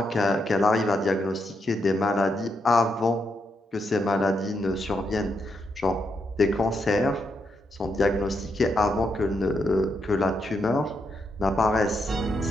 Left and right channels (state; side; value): normal; both; correlation 0.81